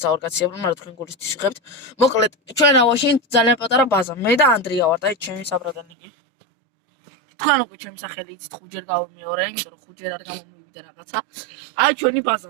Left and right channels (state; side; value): drops out; left; at 5.9 s